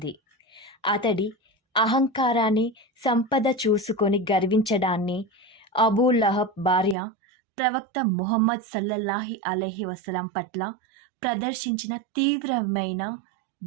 అతడి అహంకారాన్ని, సంపద చూసుకొని గర్వించడాన్ని అబూ లహబ్ భార్య ప్రవక్త ముహమ్మద్ సల్లల్లాహు అలైహి వసల్లం పట్ల ప్రదర్శించిన తీవ్రమైన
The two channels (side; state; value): left; drops out; at 7.0 s